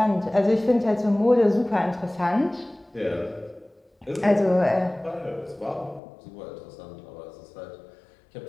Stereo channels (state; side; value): drops out; right; at 6.0 s